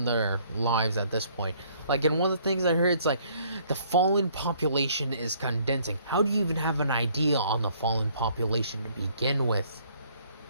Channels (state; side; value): inverted; both; correlation -0.62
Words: their lives at this point. Like, in one of the things I heard, it's like, the Fallen population is condensing. How do you even have an idea on the Fallen population to begin with?